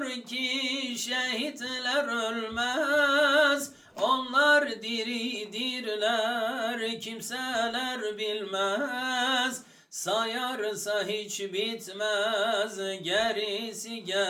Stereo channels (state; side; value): identical; both; correlation 1.00